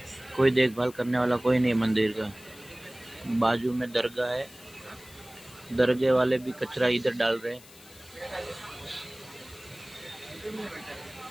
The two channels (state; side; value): noise; left; hiss, 21 dB below the sound